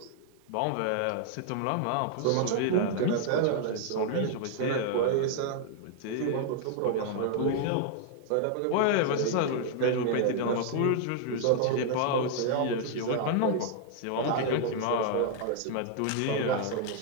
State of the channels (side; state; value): both; different; correlation 0.00